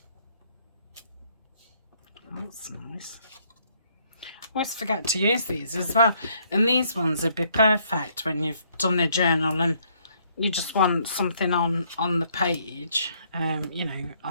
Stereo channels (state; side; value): inverted; both; correlation -0.68